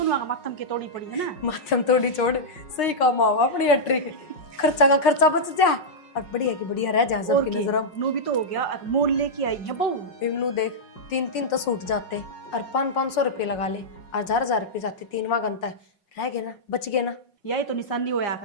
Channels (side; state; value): right; late; 5.5 ms